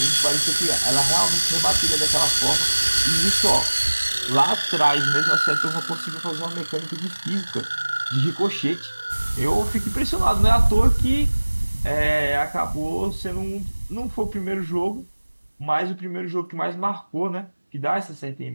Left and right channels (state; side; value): inverted; both; correlation -1.00